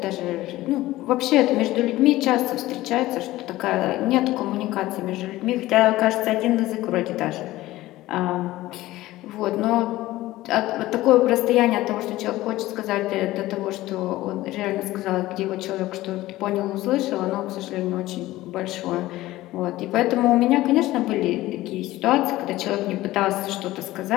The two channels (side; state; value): right; quieter; 16.9 dB